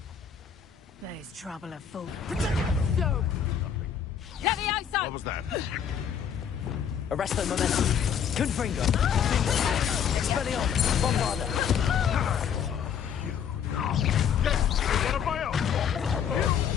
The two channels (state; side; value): quieter; right; 8.0 dB